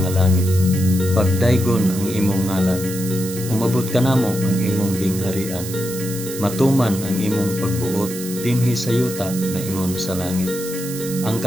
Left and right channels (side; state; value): right; noise; hiss, 10 dB below the sound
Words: langit, pagdaygon ang imong ngalan, umabot ka namo ang imong gingharian, matuman ang imong pagbuot dinhi sa yuta na ingon sa langit. Ang